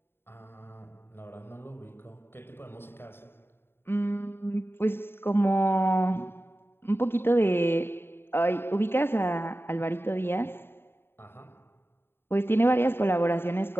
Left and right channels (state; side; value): late; right; 0.11 ms